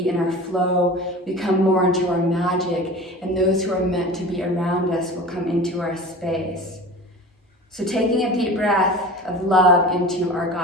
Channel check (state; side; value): normal; both; correlation 0.36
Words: in our flow, we come more into our magic, and those who are meant to be around us will come into our space. So taking a deep breath of love into our